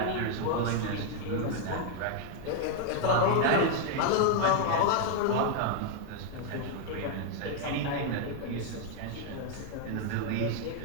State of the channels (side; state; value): both; different; correlation 0.00